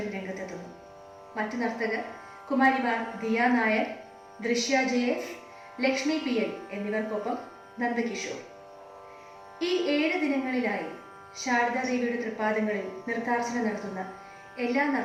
രംഗത്തെത്തുന്നു. മറ്റു നർത്തകർ കുമാരിമാർ ദിയ നായർ, ദൃശ്യ ജയേസ്, ലക്ഷ്മി പി എൽ എന്നിവർക്കൊപ്പം നന്ദകിഷോർ. ഈ 7 ദിനങ്ങളിലായി ശാരദാദേവിയുടെ തൃപ്പാദങ്ങളിൽ നൃത്താർച്ചന നടത്തുന്ന എല്ലാ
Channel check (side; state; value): both; identical; correlation 1.00